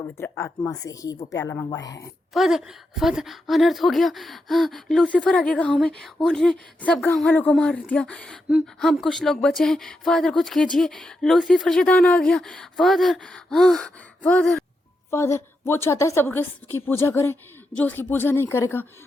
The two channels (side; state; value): both; normal; correlation 0.85